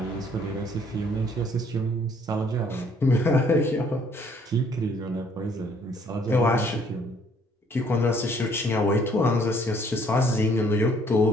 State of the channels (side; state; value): both; normal; correlation 0.62